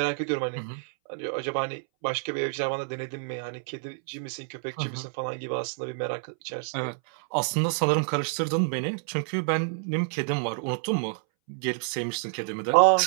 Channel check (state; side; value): silent; left; 59 dB below the other